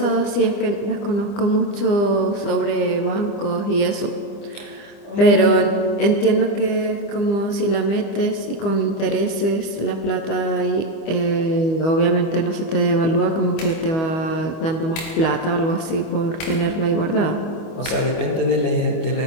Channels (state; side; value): late; right; 25 ms